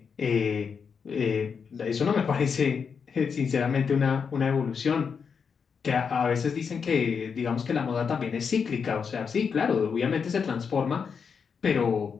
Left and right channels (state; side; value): quieter; right; 6.2 dB